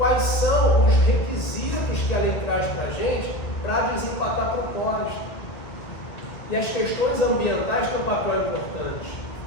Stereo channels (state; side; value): late; right; 2.0 ms